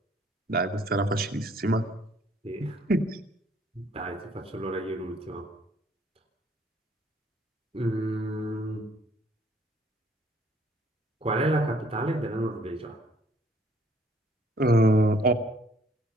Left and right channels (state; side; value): normal; both; correlation 0.62